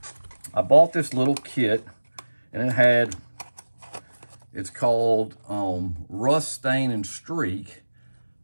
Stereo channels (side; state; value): both; inverted; correlation -1.00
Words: I bought this little kit, and it's called Rust, Stain, and Streak.